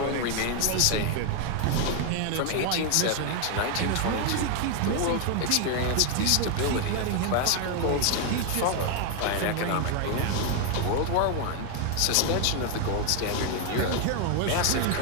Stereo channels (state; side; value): different; both; correlation 0.01